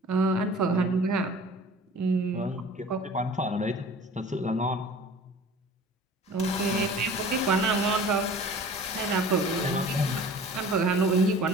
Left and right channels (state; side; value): normal; both; correlation 0.44